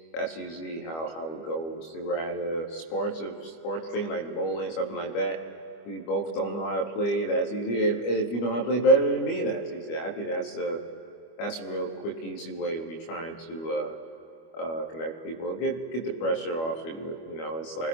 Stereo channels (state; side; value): late; right; 25 ms